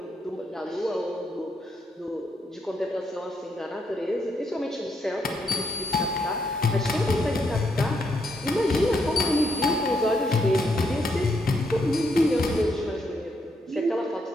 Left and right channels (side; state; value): both; normal; correlation 0.77